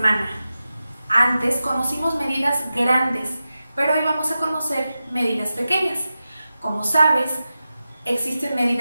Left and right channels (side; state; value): both; inverted; correlation -0.93